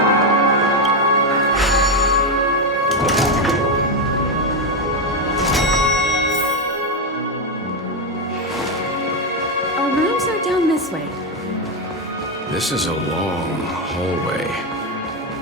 Our rooms are down this way. This is a long hallway.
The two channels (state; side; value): normal; both; correlation 0.07